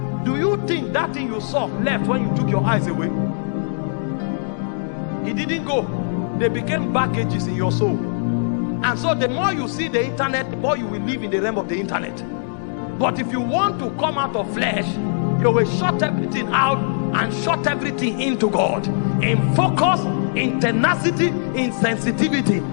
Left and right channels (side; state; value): right; silent; digital silence